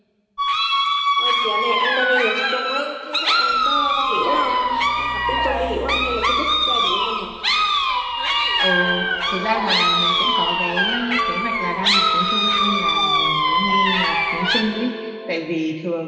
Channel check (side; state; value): both; identical; correlation 1.00